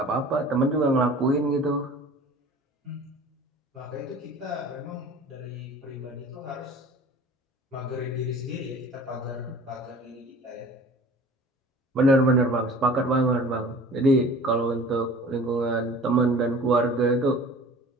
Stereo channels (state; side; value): normal; both; correlation 0.44